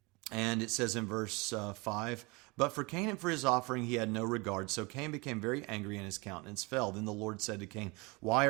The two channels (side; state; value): left; quieter; 26.7 dB